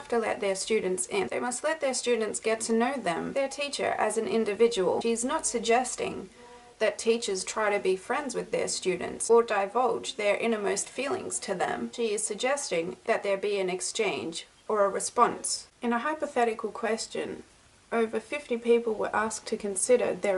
to let their students in. They must let their students get to know them, their teacher, as an individual. She is not suggesting that teachers try to be friends with their students or divulge their innermost feelings to them. She is suggesting that there be an exchange or a response. In a hypothetical question, over 50 people were asked to consider their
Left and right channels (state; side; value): identical; both; correlation 1.00